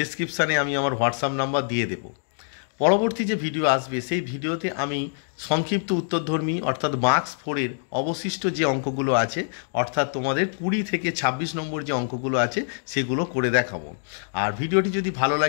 আমি আমার হোয়াটসঅ্যাপ নাম্বার দিয়ে দেব। পরবর্তী যে ভিডিও আসবে সেই ভিডিওতে আমি সংক্ষিপ্ত উত্তরধর্মী অর্থাৎ মার্কস 4-এর অবশিষ্ট যে অঙ্কগুলো আছে অর্থাৎ তোমাদের 20 থেকে 26 নম্বর যে অঙ্কগুলো আছে সেগুলো করে দেখাবো। আর ভিডিওটি যদি ভালো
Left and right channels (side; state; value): right; silent; digital silence